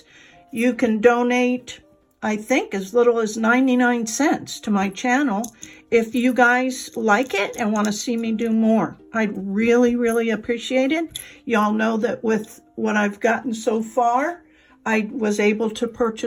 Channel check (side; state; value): both; identical; correlation 1.00